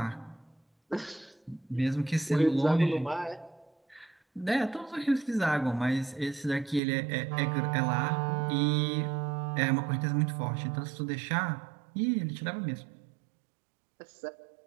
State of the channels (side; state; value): left; drops out; at 6.8 s